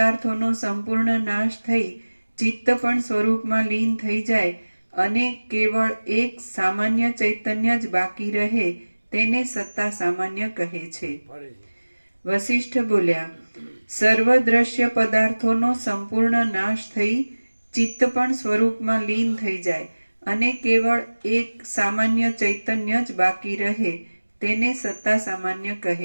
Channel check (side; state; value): both; inverted; correlation -1.00